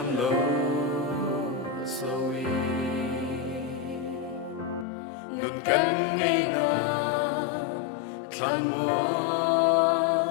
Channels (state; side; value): drops out; right; at 4.9 s